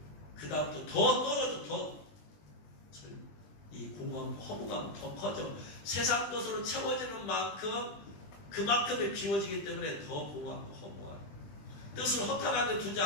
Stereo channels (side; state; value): right; late; 20 ms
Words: 그 다음부터 더 떨어져. 이 공허함, 허무감 더 커져. 세상 것으로 채워지는 만큼 그만큼에 비워지기 때문에 더 공허하고 허무함. 뜻을 허탄하게 두지